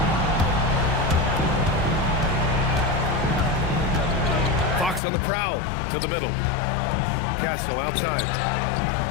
Fox on the prowl to the middle. Castle outside.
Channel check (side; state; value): right; drops out; at 5.0 s